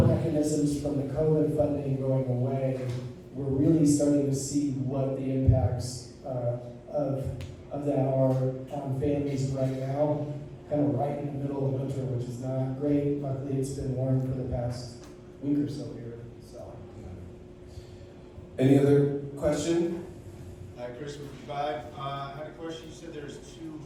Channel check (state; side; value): identical; both; correlation 1.00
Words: mechanisms from the COVID funding going away. We're really starting to see what the impacts of that are on families right now, kind of right in the middle of winter, which is not great. Luckily, it's been warm for the past week or so here. So, Any other question? Hi, Chris with Vibe. I had a question. You said there's 2